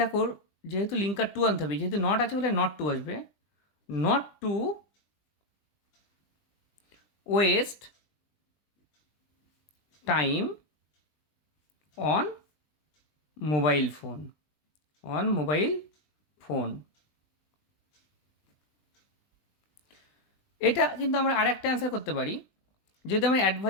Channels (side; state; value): right; late; 20 ms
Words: যেহেতু লিঙ্কার টু আনতে হবে, যেহেতু নট আছে বলে নট টু আসবে, not to waste time on mobile phone, on mobile phone. এটা কিন্তু আমরা আরেকটা অ্যান্সার করতে পারি, যদি আমরা